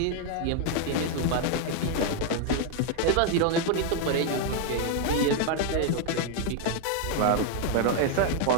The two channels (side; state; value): both; different; correlation 0.01